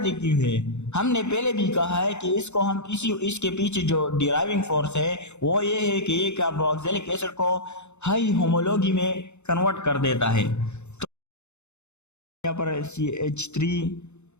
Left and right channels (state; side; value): late; right; 0.82 ms